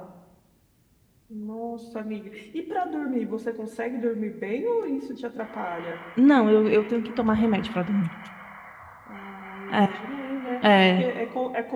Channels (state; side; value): identical; both; correlation 1.00